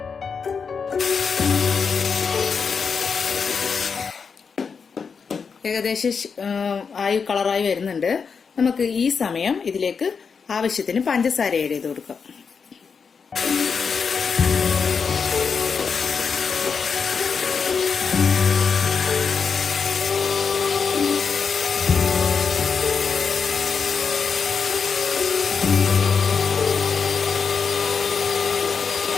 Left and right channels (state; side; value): quieter; right; 5.8 dB